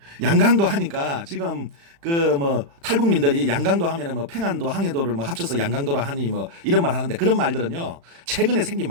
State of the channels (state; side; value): late; left; 35 ms